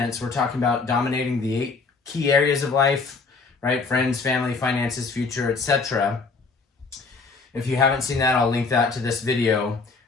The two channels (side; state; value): right; quieter; 4.3 dB